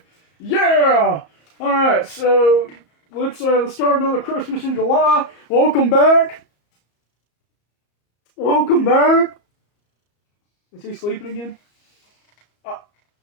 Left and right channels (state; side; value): late; right; 34 ms